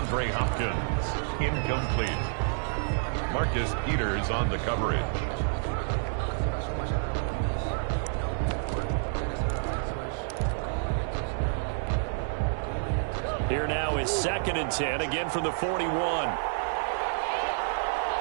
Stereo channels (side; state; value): left; silent; digital silence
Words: Hopkins. Incomplete. Marcus Peters on the coverage. Here now is 2nd and 10, again from the 41.